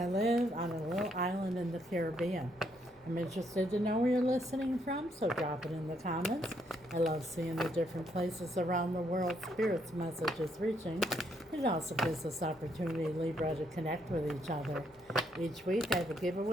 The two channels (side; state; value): both; normal; correlation 0.73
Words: live on a little island in the Caribbean. I'm interested to know where you're listening from, so drop it in the comments. I love seeing the different places around the world Spirit's message is reaching. It also gives us opportunity, Libra, to connect with each other. Each week I have a